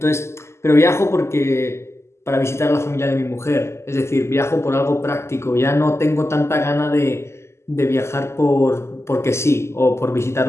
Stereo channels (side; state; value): right; late; 0.13 ms